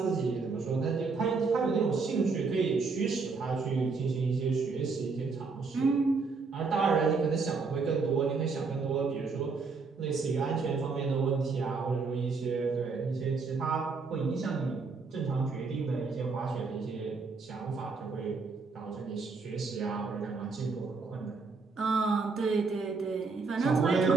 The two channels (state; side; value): quieter; left; 4.5 dB